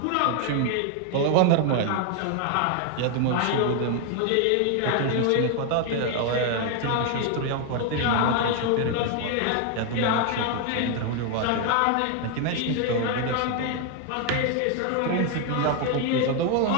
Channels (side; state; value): both; different; correlation 0.01